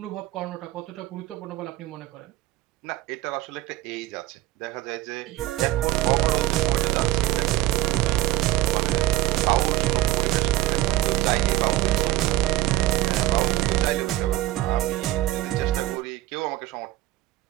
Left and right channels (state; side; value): quieter; left; 16.4 dB